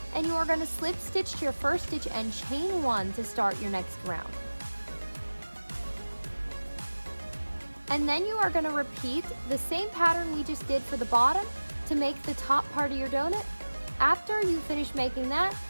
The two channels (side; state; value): both; inverted; correlation -1.00